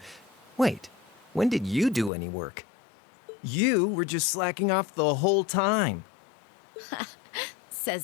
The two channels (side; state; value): right; drops out; at 2.1 s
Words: Wait, when did you do any work? You were just slacking off the whole time. Says